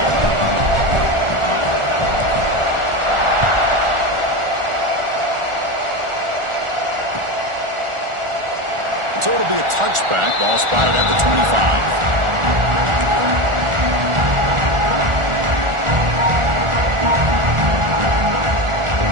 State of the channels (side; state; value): left; late; 1.4 ms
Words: So it'll be a touchback. Ball spotted at the 25.